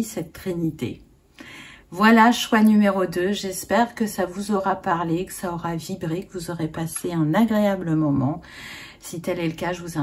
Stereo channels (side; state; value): both; identical; correlation 1.00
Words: cette trinité. Voilà, choix numéro 2. J'espère que ça vous aura parlé, que ça aura vibré, que vous aurez passé un agréable moment. Si tel est le cas, je vous